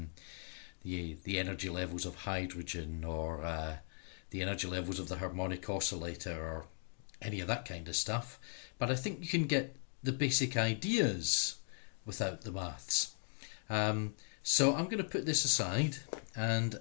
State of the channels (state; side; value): silent; right; 52 dB below the other